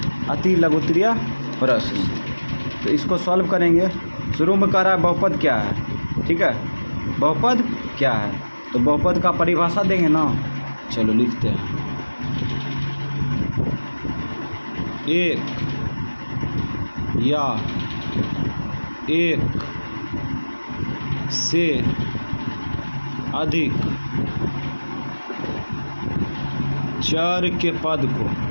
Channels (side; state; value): both; inverted; correlation -1.00